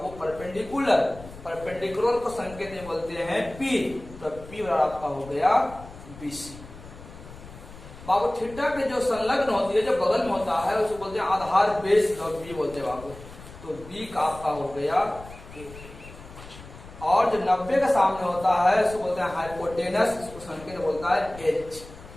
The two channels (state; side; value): noise; left; rumble, 17 dB below the sound